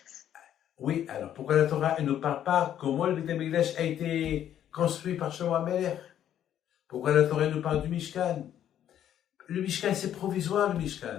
Oui, alors pourquoi la Torah elle ne parle pas comment le Beth Amikdash a été construit par Shlomo HaMelech? Pourquoi la Torah nous parle du Mishkan? Le Mishkan, c'est provisoire, le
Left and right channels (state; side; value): quieter; right; 10.6 dB